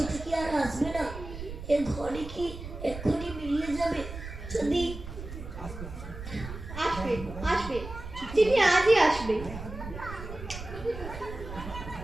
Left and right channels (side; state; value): right; noise; rumble, 10 dB below the sound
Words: কি আর আসবে না? এ ঘরে কি এক্ষুনি মিলিয়ে যাবে? যদি আসবে, আসবে, চিঠি আজই আসবে।